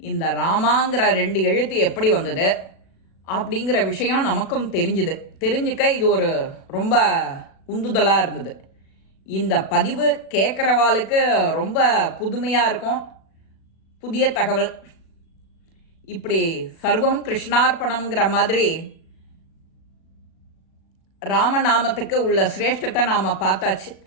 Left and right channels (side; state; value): right; late; 36 ms